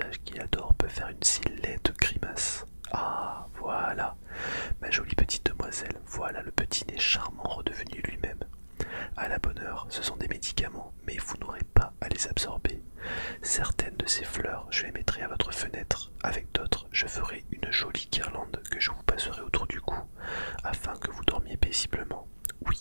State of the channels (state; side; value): inverted; both; correlation -1.00